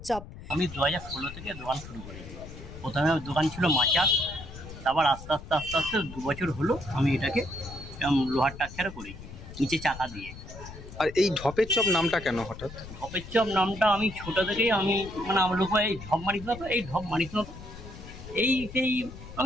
চপ। আমি 2016 থেকে দোকান শুরু করেছি। প্রথমে দোকান ছিল মাচার, তারপর আস্তে আস্তে 2 বছর হলো আমি এটাকে লোহার টাক্সারে করেছি, নিচে চাকা দিয়ে। আর এই ঢপের চপ নামটা কেন হঠাৎ? ঢপের চপ নামটা আমি ছোটো থেকেই আমার লোক এই ঢপ মারিস না তো, এই ঢপ মারিস না তো, সেই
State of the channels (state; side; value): noise; left; rumble, 14 dB below the sound